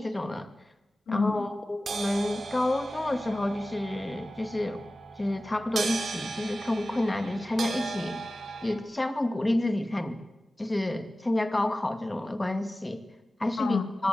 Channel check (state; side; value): normal; both; correlation 0.96